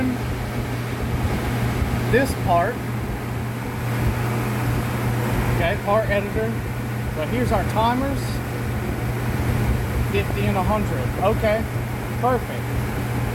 this part. Okay, part editor. So here's our timers. 50 and 100. Okay, perfect.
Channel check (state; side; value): identical; both; correlation 1.00